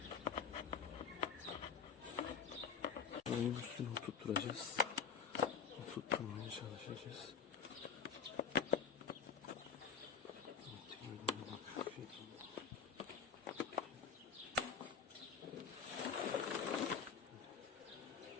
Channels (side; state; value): right; quieter; 6.2 dB